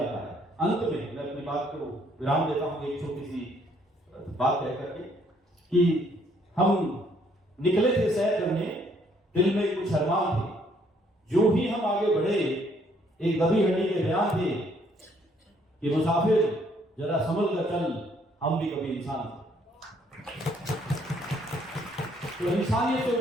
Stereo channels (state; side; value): normal; both; correlation 0.66